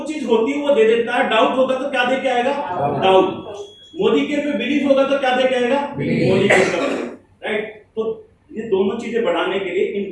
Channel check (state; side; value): identical; both; correlation 1.00